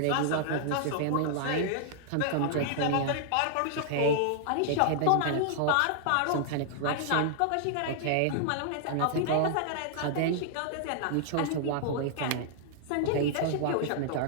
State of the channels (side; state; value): both; different; correlation -0.01